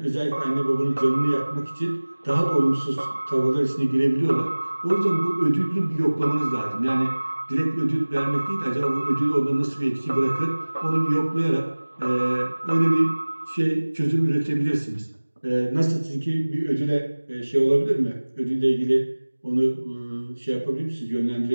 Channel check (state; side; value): inverted; both; correlation -1.00